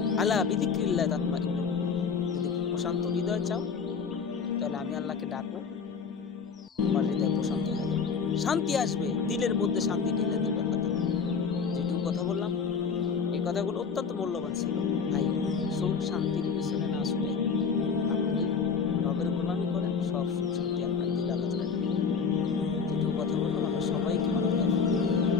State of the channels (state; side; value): quieter; right; 5.8 dB